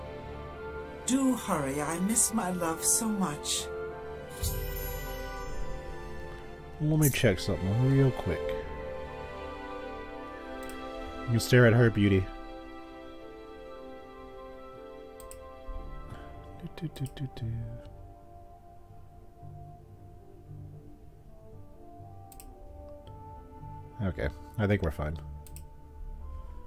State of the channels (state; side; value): identical; both; correlation 1.00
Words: Do hurry. I miss my love so much. Let me check something real quick. You can stare at her beauty. Okay, I think we're fine.